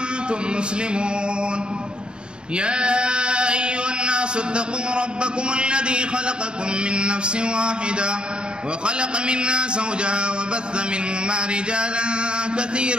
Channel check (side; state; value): left; late; 0.051 ms